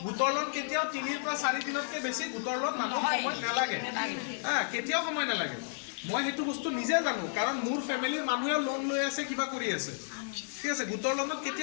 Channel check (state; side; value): silent; right; digital silence